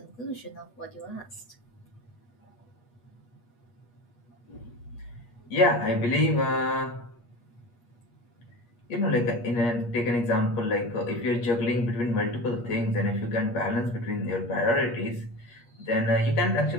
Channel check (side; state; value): right; late; 8.4 ms